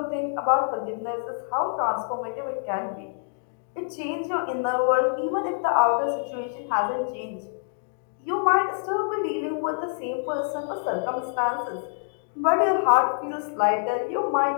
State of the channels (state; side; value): silent; right; digital silence